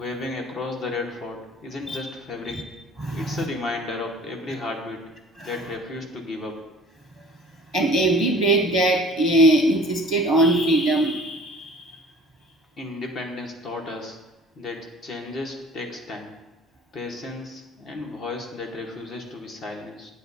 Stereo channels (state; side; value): normal; both; correlation 0.48